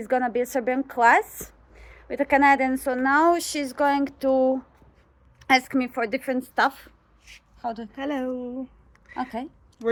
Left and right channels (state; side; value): identical; both; correlation 1.00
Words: gonna be a Serbian class with a Canadian. So now she's going to ask me for different stuff. Hello. Okay. We're